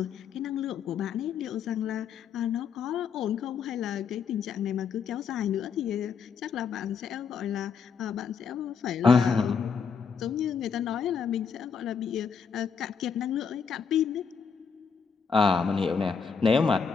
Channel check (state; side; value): quieter; right; 6.1 dB